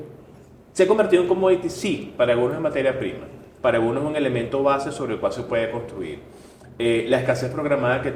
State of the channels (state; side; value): identical; both; correlation 1.00